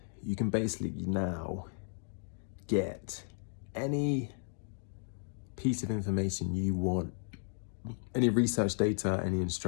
You can basically now get any piece of information you want, any research data, any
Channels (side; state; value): right; silent; 55 dB below the other